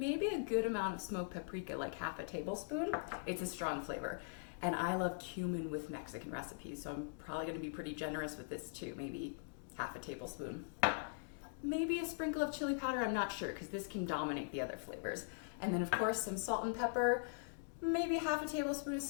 a good amount of smoked paprika, like half a tablespoon. It's a strong flavor. And I love cumin with Mexican recipes, so I'm probably gonna be pretty generous with this too, maybe half a tablespoon. Maybe a sprinkle of chili powder, I'm not sure, because this can dominate the other flavors. And then of course some salt and pepper, maybe half a tablespoon of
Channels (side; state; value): right; silent; digital silence